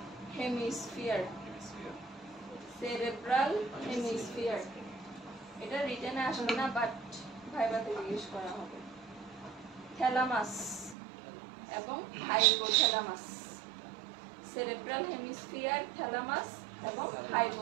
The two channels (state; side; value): drops out; left; at 11.0 s